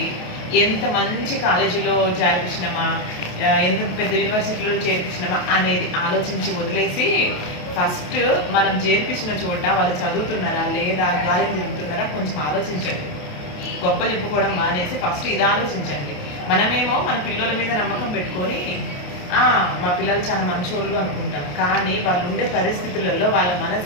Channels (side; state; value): right; late; 28 ms